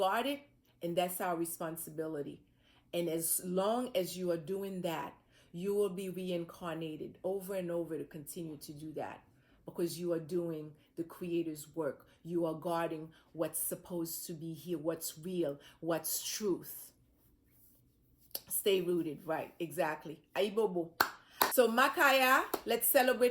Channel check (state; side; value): identical; both; correlation 1.00